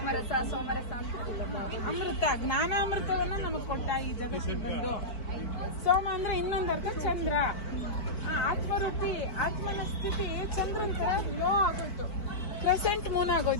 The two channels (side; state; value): right; late; 4.5 ms